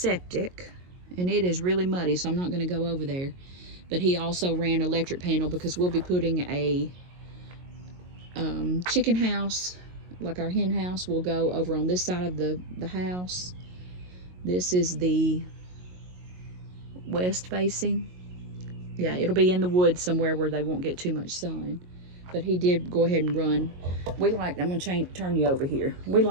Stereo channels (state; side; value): late; left; 22 ms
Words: and it is really muddy, so I'm not going to go over there. But he also ran electric panel, because we'll be putting a chicken house, like our hen house, will go over on this side of the house. This is the west facing. Yeah, it'll be in the woods somewhere where they won't get too much sun. But he did go ahead and run. We like, I'm gonna turn you over here. We